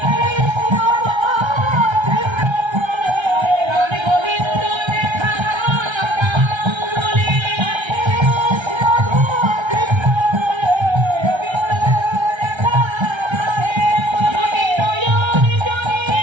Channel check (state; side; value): late; left; 1.3 ms